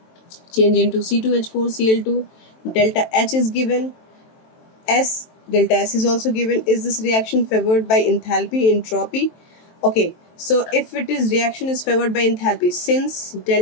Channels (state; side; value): late; right; 23 ms